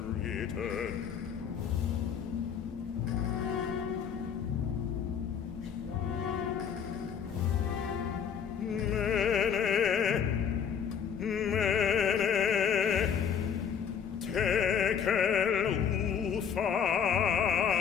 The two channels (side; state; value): right; quieter; 7.6 dB